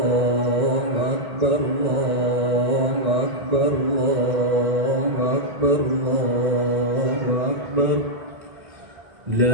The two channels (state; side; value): late; left; 2.0 ms